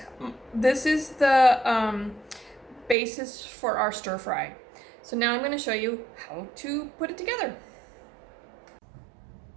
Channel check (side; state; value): left; drops out; at 3.0 s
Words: the basis for our stir fry. So now I'm going to show you how to put it together.